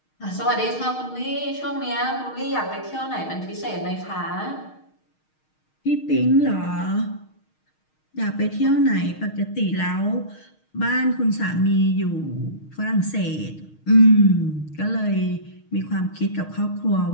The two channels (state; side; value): late; right; 6.4 ms